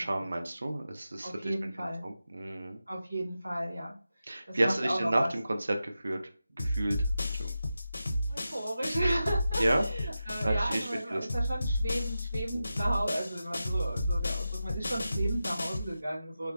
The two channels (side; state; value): both; inverted; correlation -0.91